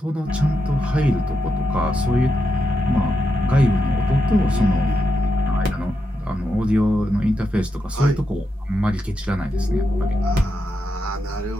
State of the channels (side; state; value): both; normal; correlation 0.85